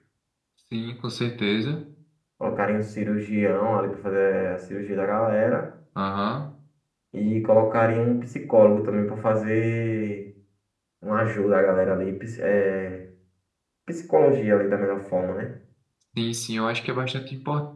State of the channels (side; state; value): both; identical; correlation 1.00